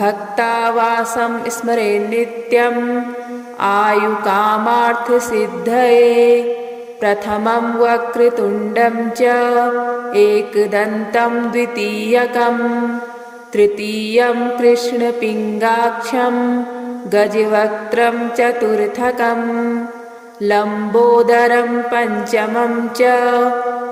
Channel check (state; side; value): identical; both; correlation 1.00